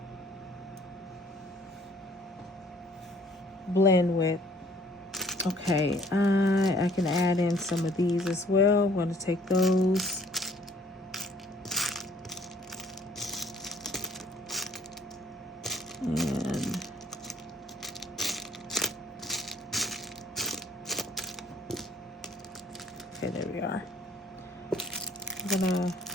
blend with. Okay, I can add in some of these as well. I'm going to take those. And okay, there we are. I'm gonna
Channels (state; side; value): normal; both; correlation 0.59